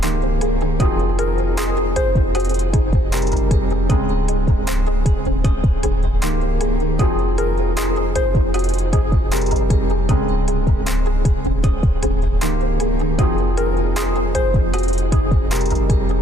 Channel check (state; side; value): normal; both; correlation 0.73